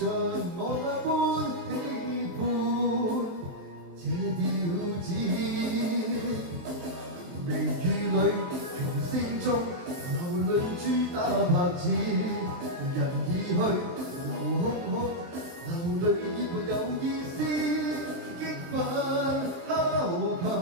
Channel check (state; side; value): late; left; 23 ms